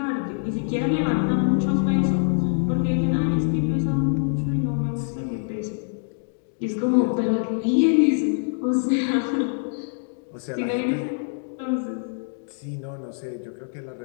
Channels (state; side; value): silent; right; 62 dB below the other